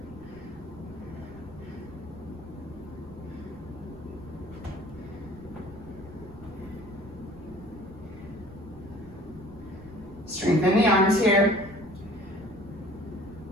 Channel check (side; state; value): right; noise; rumble, 18 dB below the sound